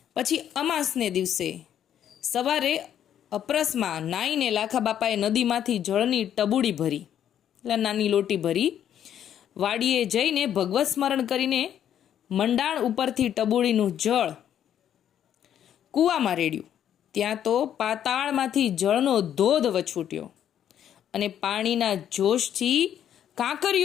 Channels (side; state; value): right; quieter; 10.0 dB